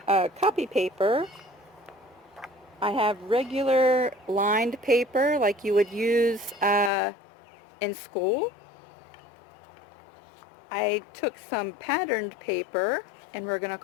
paper. I have regular lined paper like you would use in school. I took some patterned paper and we're going to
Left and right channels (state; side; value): drops out; right; at 6.9 s